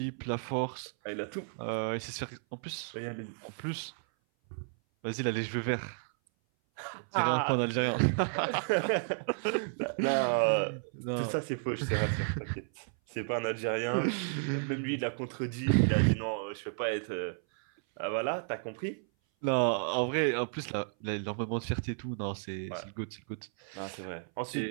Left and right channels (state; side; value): silent; left; 56 dB below the other